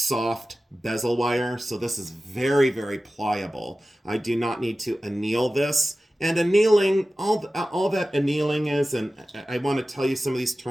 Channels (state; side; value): normal; both; correlation 0.95